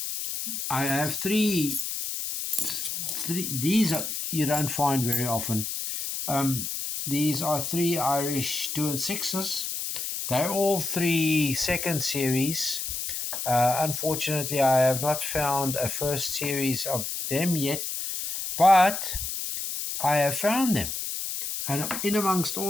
have three. These you don't find very often. These are 3 Irish 2 and 6s. They're all 3 second series. Unfortunately, I have not found a first series of them yet, but I have found them. And in amongst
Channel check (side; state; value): left; noise; hiss, 4 dB below the sound